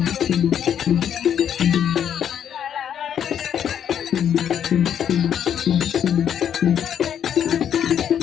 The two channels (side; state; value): right; quieter; 9.1 dB